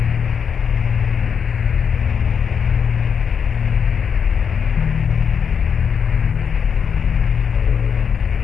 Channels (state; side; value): quieter; right; 6.8 dB